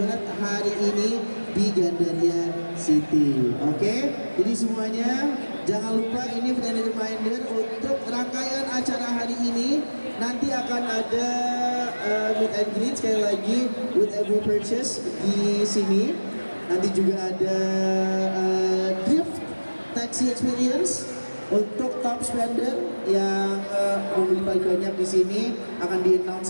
hari ini di Gandaria City. Oke, jadi semuanya jangan lupa ini friendly reminder untuk rangkaian acara hari ini. Nanti akan ada meet and greet sekali lagi with every purchase di sini. Nanti juga ada drift taxi experience untuk top spender yang membeli paling banyak di sini akan di-announce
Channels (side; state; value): both; inverted; correlation -1.00